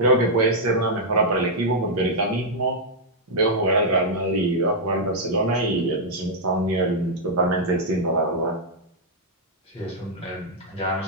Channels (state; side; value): normal; both; correlation -0.05